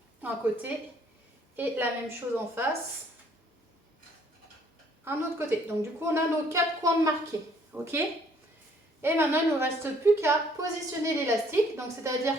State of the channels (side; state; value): both; normal; correlation 0.62